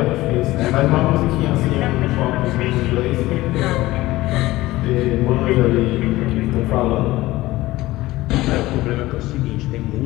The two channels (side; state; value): right; quieter; 17.9 dB